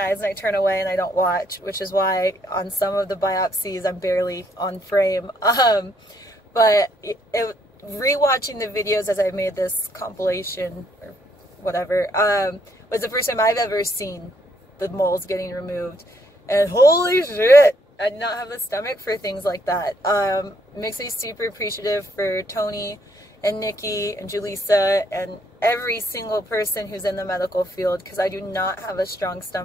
and I turn away and I don't watch, which is why on some of the biopsies I'm barely on frame. But rewatching the videos as I made this compilation or whatever was the first time I've ever seen the moles getting removed. And holy shit, I do not have the stomach for things like that. Makes me super appreciative for Toni and Nikki and Julissa and every single person who's in the medical field, because I do not have a strong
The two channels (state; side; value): normal; both; correlation 0.70